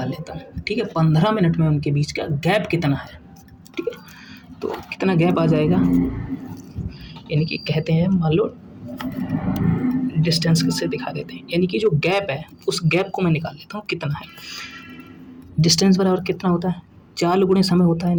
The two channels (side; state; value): both; identical; correlation 1.00